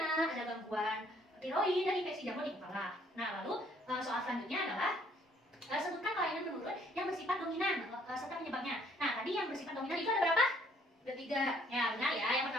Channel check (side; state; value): both; normal; correlation 0.63